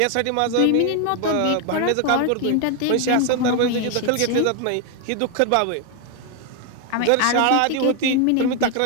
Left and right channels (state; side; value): different; both; correlation 0.01